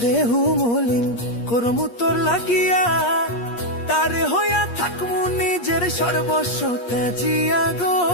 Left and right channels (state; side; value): late; right; 8.5 ms